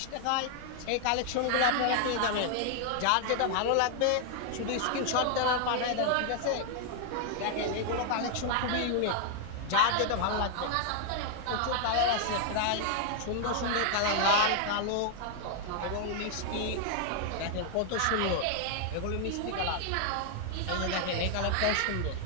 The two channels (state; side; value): different; both; correlation 0.00